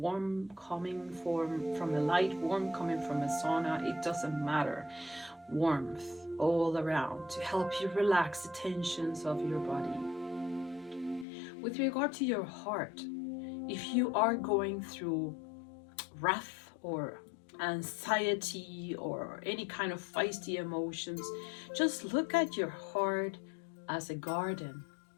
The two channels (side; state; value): right; drops out; at 11.2 s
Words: coming from the light, warmth coming from a sauna, it doesn't matter. Warmth all around to help you relax the tensions of your body. With regard to your heart, if you are going through wrath or anxiety or any kind of feisty emotions, just look at your heart as a garden.